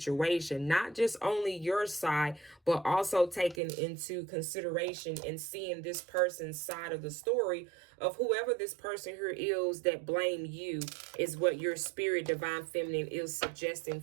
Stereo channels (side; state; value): left; drops out; at 3.6 s